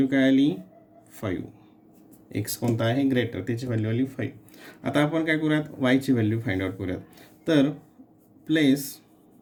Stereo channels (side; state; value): both; identical; correlation 1.00